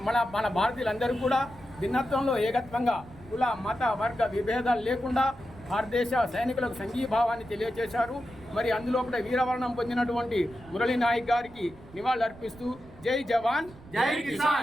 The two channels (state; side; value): noise; right; rumble, 20 dB below the sound